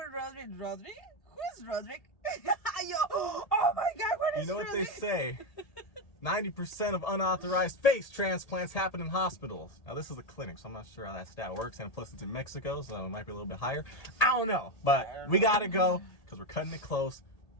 Rodrick. Rodrick? Who's Rodrick? Oh my God, what is You know what Rodrick? they say? 90% of unauthorized face transplants happen in hospitals. Now this is a clinic, so I'm not sure how that stat works, and plus it's in Mexico, so it might be a little bit higher. I don't know, but we gotta go because we're cutting it close.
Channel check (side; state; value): right; late; 1.8 ms